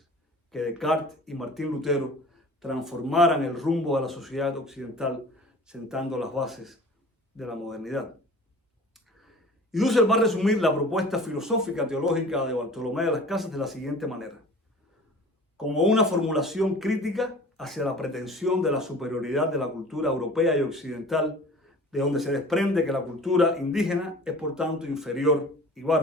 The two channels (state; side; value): normal; both; correlation 0.43